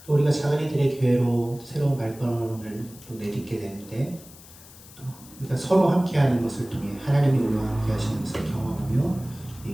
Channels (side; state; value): left; noise; hiss, 20 dB below the sound